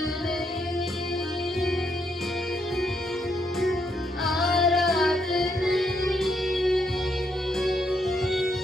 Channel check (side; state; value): both; normal; correlation 0.76